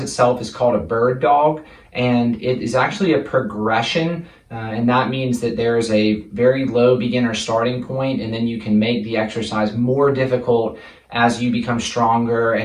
itself is called a bird dog, and it is actually a progression. And that means that there's a very low beginner starting point, and then you can make the exercise more difficult as you become stronger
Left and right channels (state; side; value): identical; both; correlation 1.00